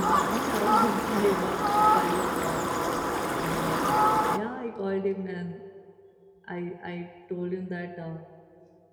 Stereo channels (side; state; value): both; identical; correlation 1.00